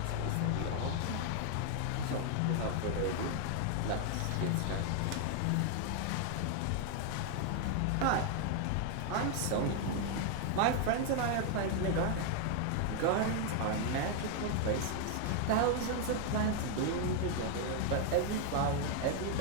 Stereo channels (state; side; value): different; both; correlation 0.00